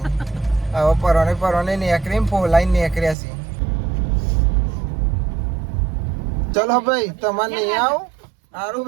હવે પરોને નીકળીને ફોલાઈને નીકળ્યા છે. ચલો ભાઈ તમારે નહીં આવો સારું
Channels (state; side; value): drops out; left; at 3.2 s